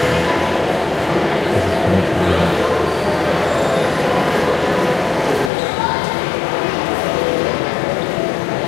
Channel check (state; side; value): drops out; right; at 5.5 s